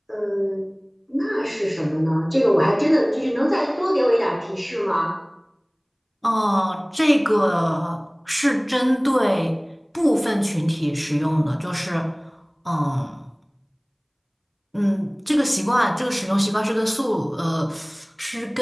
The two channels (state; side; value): identical; both; correlation 1.00